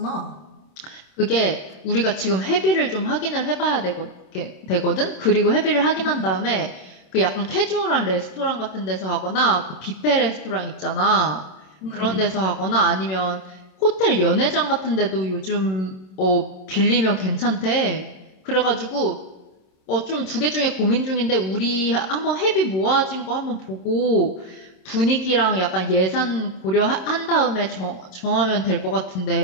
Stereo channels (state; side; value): late; right; 27 ms